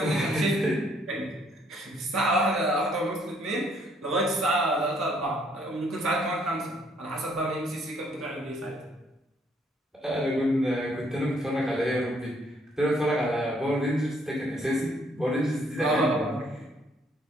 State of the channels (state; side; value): normal; both; correlation 0.67